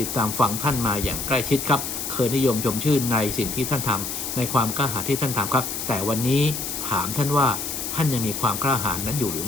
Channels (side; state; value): left; noise; hiss, 4 dB below the sound